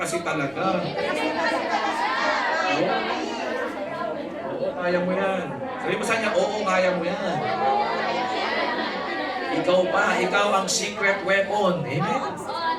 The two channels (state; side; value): noise; right; rumble, 29 dB below the sound